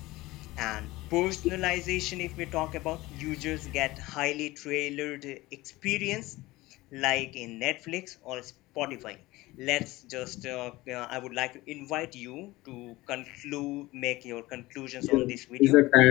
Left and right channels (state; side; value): quieter; right; 19.5 dB